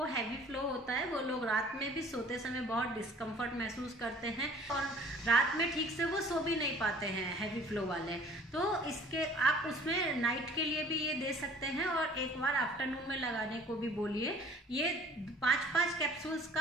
हैवी फ्लो होता है वो लोग रात में भी सोते समय बहुत डिस्कम्फर्ट महसूस करते हैं और रात में ठीक से वो सो भी नहीं पाते हैं हैवी फ्लो वाले, तो इसके आप उसमें नाइट के लिए भी ये दे सकते हैं और एक बार आफ्टरनून में लगाने को भी बोलिए। ये 5-5 कैप्सूल्स का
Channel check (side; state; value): both; normal; correlation 0.51